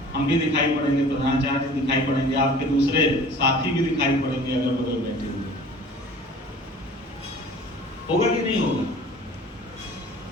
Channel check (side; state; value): both; normal; correlation 0.46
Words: हम भी दिखाई पड़ेंगे, प्रधानाचार्य दिखाई पड़ेंगे, आपके दूसरे साथी भी दिखाई पड़ेंगे अगर बगल बैठे हुए। होगा कि नहीं होगा?